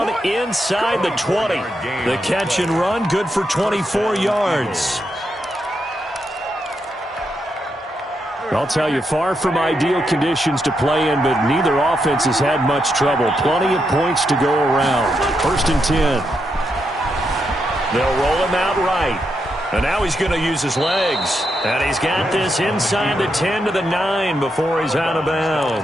inside the 20. The catch and run, good for 24 yards. I'll tell you, far from ideal conditions to play in, but neither offense has had much trouble. Plenty of points to go around. 1st and 10. They'll roll him out right. And now he's going to use his legs. And he's got this inside the 10 to the 9 before he's out of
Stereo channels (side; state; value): both; normal; correlation 0.82